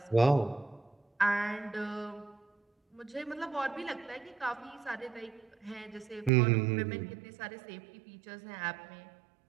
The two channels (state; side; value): drops out; left; at 6.3 s